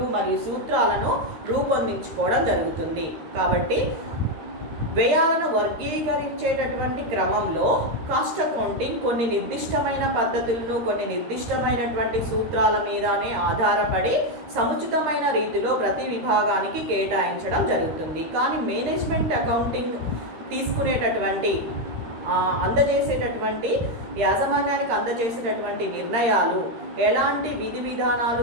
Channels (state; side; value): late; left; 13 ms